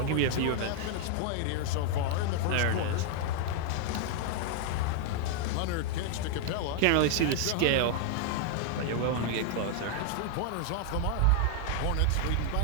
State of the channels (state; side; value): different; both; correlation 0.00